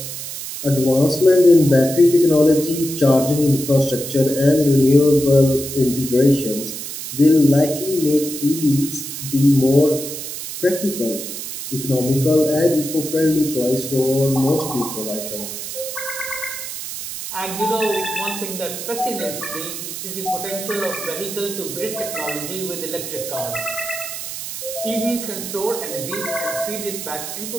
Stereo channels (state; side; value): noise; right; hiss, 8 dB below the sound